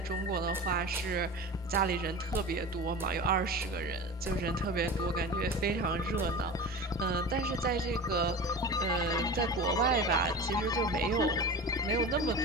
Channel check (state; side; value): normal; both; correlation 0.31